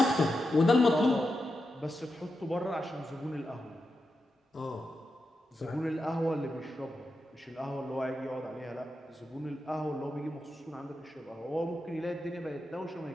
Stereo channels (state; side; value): normal; both; correlation 0.88